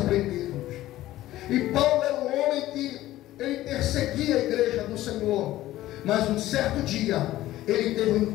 E Paulo era um homem que ele perseguia a igreja do Senhor, mas um certo dia ele teve um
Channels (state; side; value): quieter; right; 15.2 dB